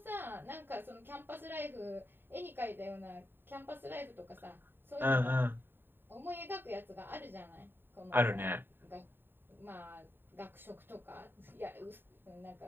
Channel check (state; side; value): late; left; 0.098 ms